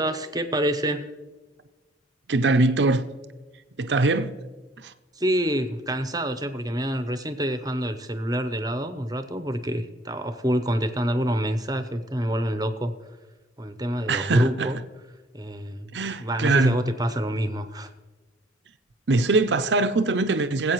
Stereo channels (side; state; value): both; normal; correlation 0.57